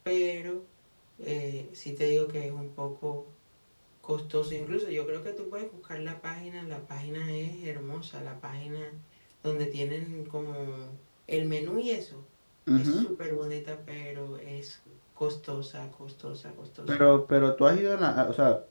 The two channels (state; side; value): inverted; both; correlation -1.00